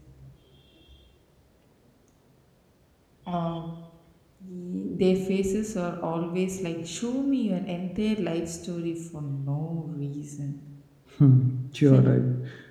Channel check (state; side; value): identical; both; correlation 1.00